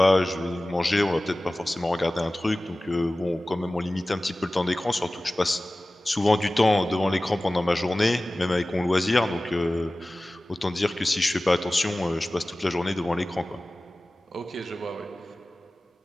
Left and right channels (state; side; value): normal; both; correlation 0.97